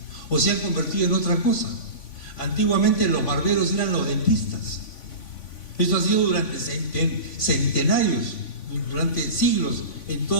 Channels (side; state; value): right; late; 3.5 ms